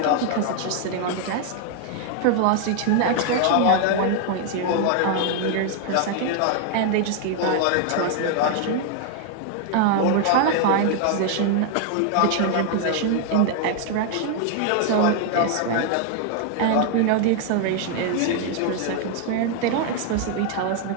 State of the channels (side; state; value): both; different; correlation 0.00